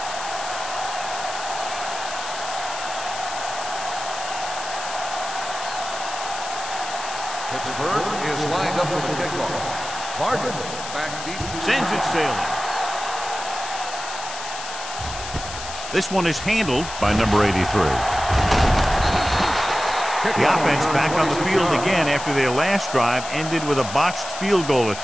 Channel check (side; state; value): left; noise; hiss, 10 dB below the sound